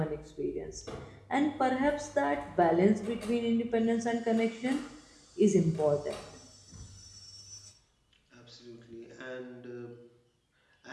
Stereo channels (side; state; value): both; identical; correlation 1.00